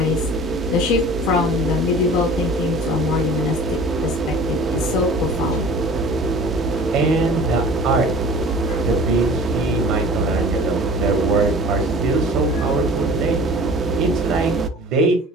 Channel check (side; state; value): both; normal; correlation 0.43